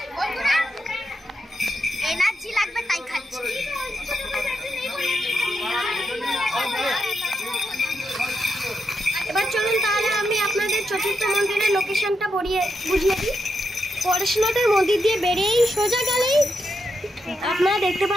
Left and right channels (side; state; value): both; normal; correlation 0.84